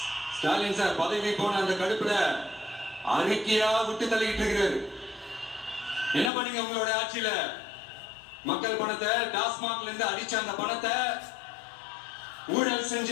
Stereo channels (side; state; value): right; drops out; at 6.3 s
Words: ஸ்டாலின் சார் பதவி போன அந்த கடுப்புல அறிக்கையா விட்டு தள்ளிட்டு இருக்கிறாரு. என்ன பண்ணீங்க உங்களோட ஆட்சியில? மக்கள் பணத்தை டாஸ்மாக்ல இருந்து அடிச்ச அந்த பணத்தை ஊழல் செஞ்ச